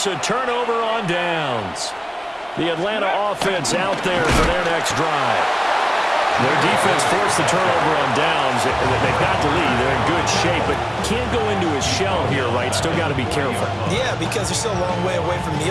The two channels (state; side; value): identical; both; correlation 1.00